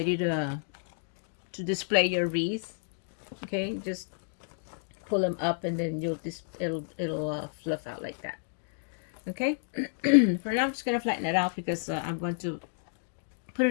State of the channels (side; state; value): right; silent; digital silence